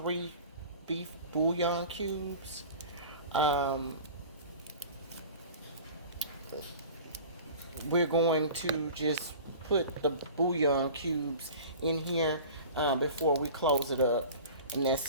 beef bouillon cubes. Um, we're going to just put the bouillon cubes in here before we close it up, and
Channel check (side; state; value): both; inverted; correlation -0.40